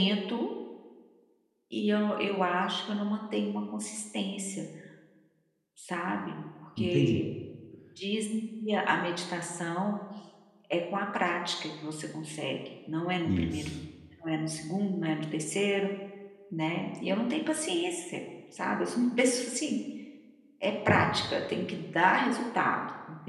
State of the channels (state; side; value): identical; both; correlation 1.00